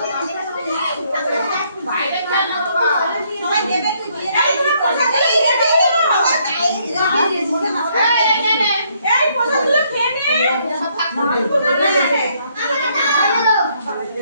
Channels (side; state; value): both; inverted; correlation -0.70